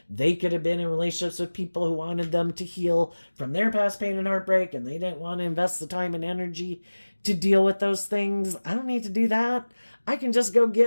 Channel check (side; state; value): both; inverted; correlation -1.00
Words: they could have been in relationships with people who wanted them to heal from their past pain and heartbreak, and they didn't want to invest the time and energy to deal with those things. I don't need to do that. I can just go